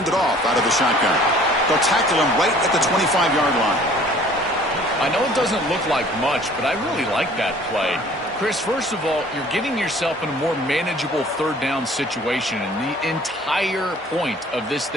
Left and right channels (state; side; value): normal; both; correlation 0.52